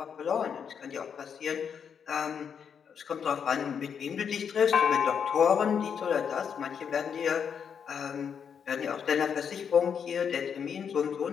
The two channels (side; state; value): right; quieter; 7.3 dB